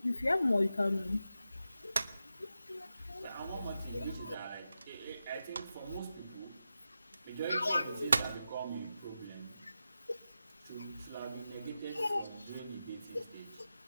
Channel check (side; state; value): both; inverted; correlation -0.90